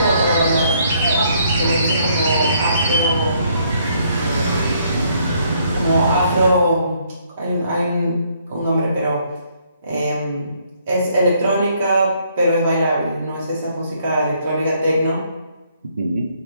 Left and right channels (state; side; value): inverted; both; correlation -0.68